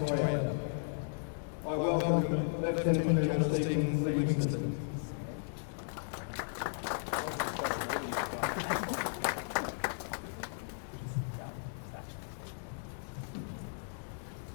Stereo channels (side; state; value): right; silent; digital silence